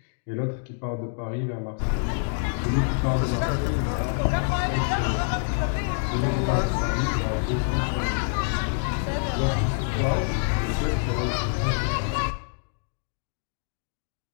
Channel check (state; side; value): silent; right; digital silence